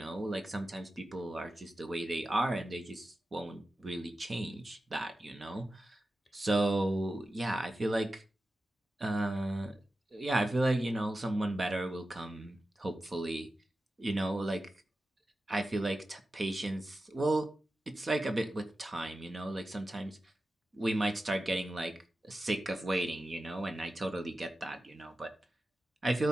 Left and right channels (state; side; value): normal; both; correlation 0.93